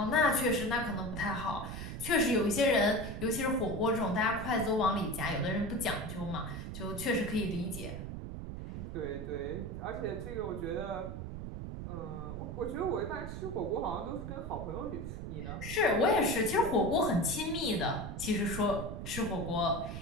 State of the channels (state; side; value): noise; right; rumble, 7 dB below the sound